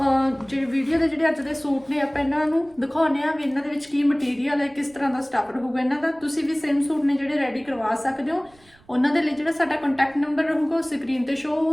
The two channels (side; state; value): right; noise; rumble, 30 dB below the sound